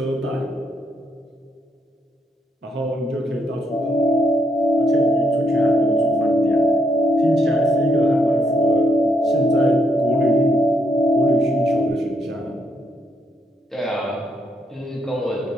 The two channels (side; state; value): both; normal; correlation 0.76